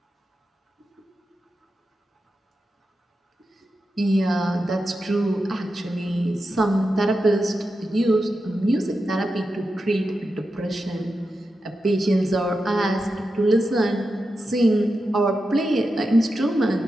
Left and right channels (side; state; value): both; normal; correlation 0.89